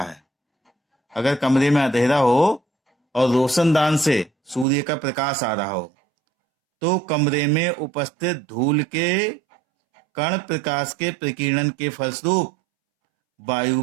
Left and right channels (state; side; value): drops out; left; at 4.7 s